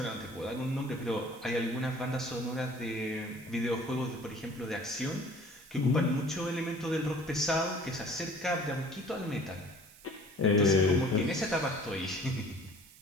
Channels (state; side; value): noise; right; hiss, 22 dB below the sound